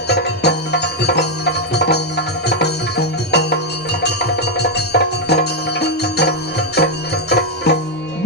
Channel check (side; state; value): both; normal; correlation 0.01